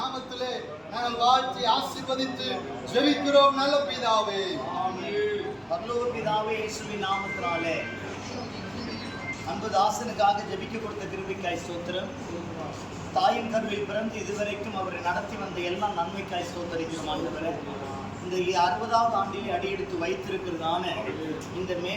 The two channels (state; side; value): identical; both; correlation 1.00